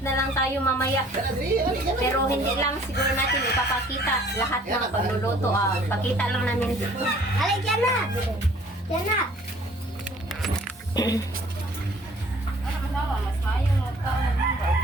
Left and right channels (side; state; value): both; normal; correlation 0.54